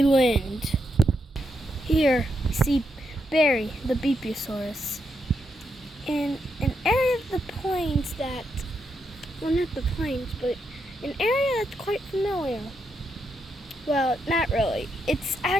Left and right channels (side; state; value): both; normal; correlation 0.81